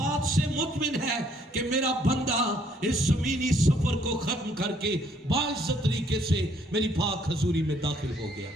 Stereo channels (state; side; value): normal; both; correlation 0.66